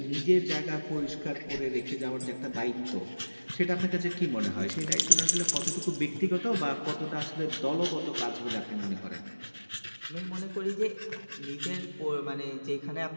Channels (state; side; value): inverted; both; correlation -1.00